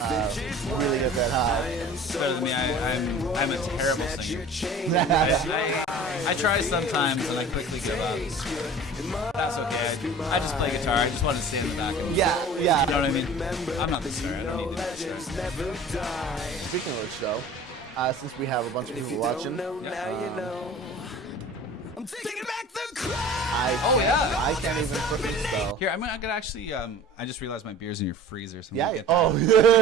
really get that high. Better than me. I'm a terrible singer. I try sometimes and I quickly give up. That's okay. I just play guitar. I just want to stay in the back. Yeah. You know what I mean? I'm not the star. I don't need to be the star. Speaking of which, though, since we have a bunch of people watching, I'm taking back the crowd. I can't even freaking spell. Here, I'm gonna actually. I just realized my beer's in your freezer. So Yeah. Oh.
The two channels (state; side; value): normal; both; correlation 0.42